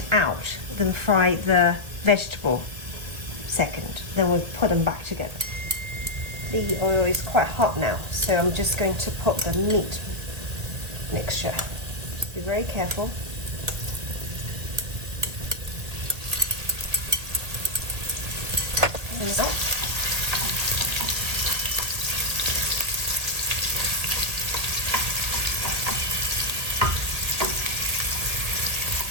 out, then fry the vegetable second. Then we'll put them back together. The oil is quite hot now, so I'm just going to put the meat mixture. Just be very careful. And up.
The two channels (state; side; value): late; left; 1.8 ms